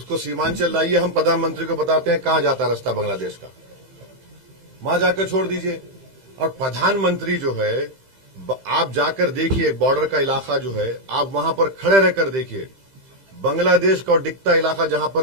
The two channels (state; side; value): late; left; 15 ms